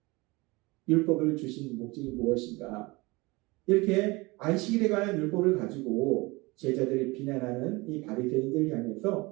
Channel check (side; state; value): left; quieter; 23.8 dB